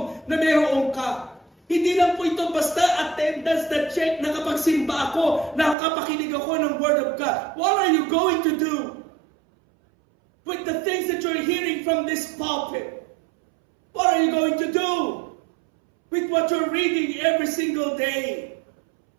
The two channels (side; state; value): left; drops out; at 5.8 s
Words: na mayroon ka. Hindi lang po ito basta attendance na check, nakapagsimba ako, nakapakinig ako ng Word of God. What are you going to do with the things that you're hearing from this pulpit? What are you going to do with what you're reading every single day?